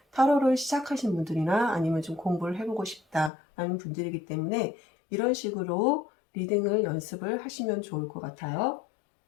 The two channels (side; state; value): right; drops out; at 3.3 s